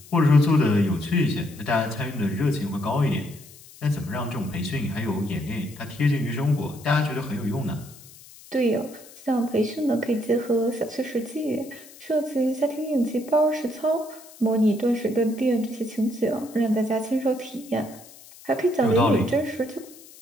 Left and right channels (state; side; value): noise; left; hiss, 21 dB below the sound